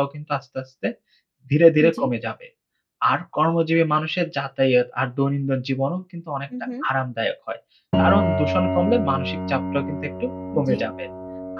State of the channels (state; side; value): identical; both; correlation 1.00